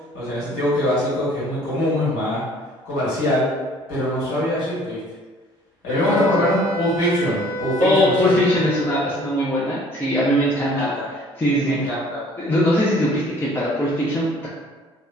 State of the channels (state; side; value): normal; both; correlation 0.55